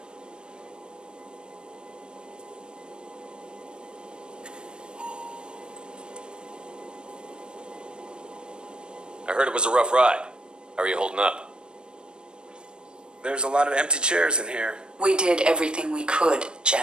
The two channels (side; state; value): left; late; 0.052 ms